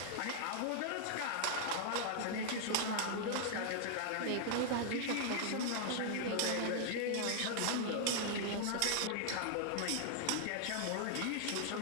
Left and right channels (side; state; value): both; different; correlation -0.01